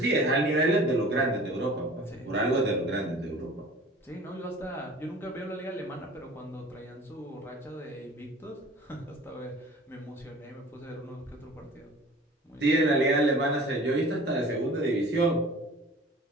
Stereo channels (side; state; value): both; normal; correlation 0.44